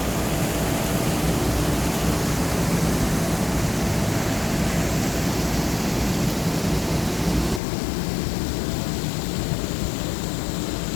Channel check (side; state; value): right; drops out; at 7.6 s